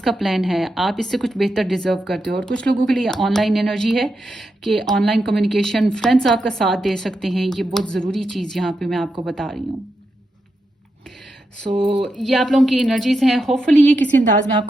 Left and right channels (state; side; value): normal; both; correlation 0.86